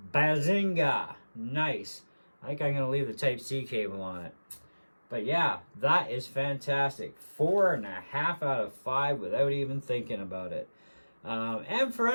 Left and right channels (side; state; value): both; inverted; correlation -1.00